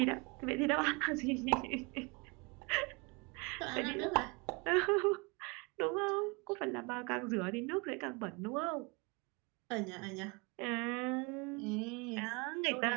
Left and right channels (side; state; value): left; quieter; 28.9 dB